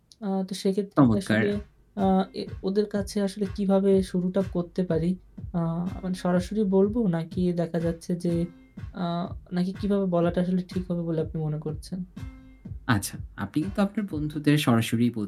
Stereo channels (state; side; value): identical; both; correlation 1.00